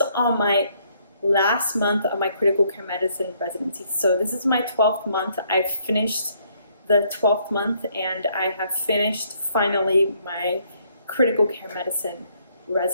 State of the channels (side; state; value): both; inverted; correlation -0.68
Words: on my last month of my critical care medicine residency. So this is my 12th month. I've finished the 12th month and I have finished finally my critical care medicine